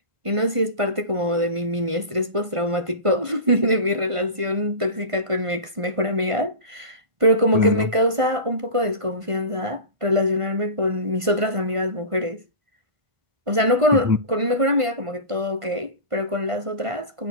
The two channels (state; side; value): late; left; 1.5 ms